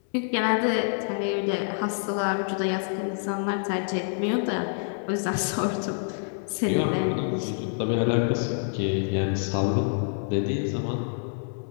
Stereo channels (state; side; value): silent; right; 60 dB below the other